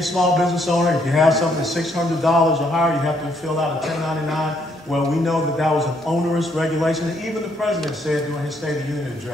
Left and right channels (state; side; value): normal; both; correlation 0.71